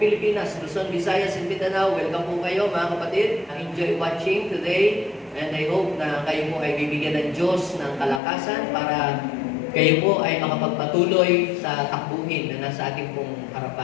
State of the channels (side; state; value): right; drops out; at 8.2 s